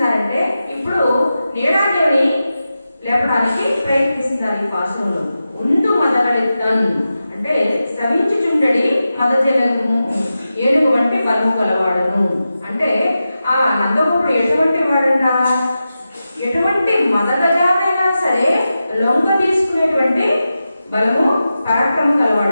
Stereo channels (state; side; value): inverted; both; correlation -0.92